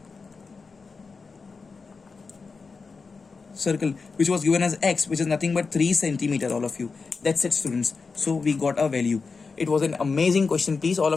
which was given as x, which is nothing but 3 centimeter, all of you. That's it, students. So we got a value. It was an amazing question. Please, all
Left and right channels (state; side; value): quieter; right; 4.6 dB